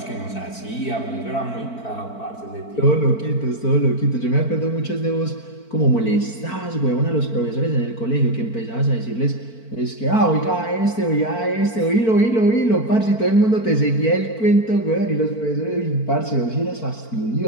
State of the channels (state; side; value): late; right; 4.5 ms